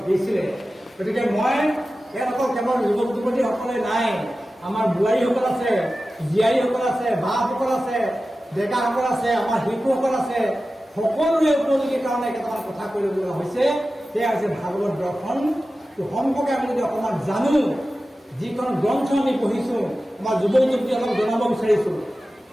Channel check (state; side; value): normal; both; correlation 0.94